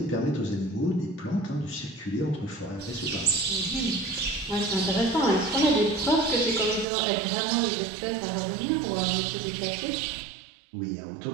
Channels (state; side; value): drops out; left; at 6.9 s